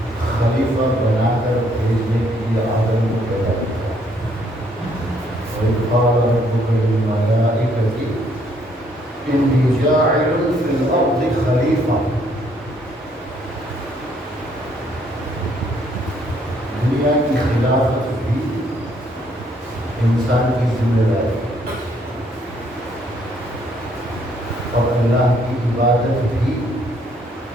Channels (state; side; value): normal; both; correlation 0.68